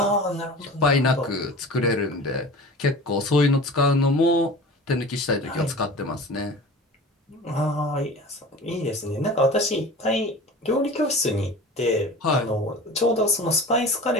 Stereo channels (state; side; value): normal; both; correlation 0.38